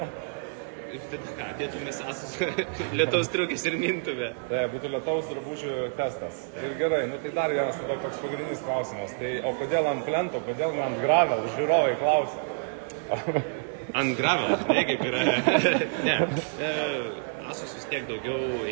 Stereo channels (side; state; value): left; silent; digital silence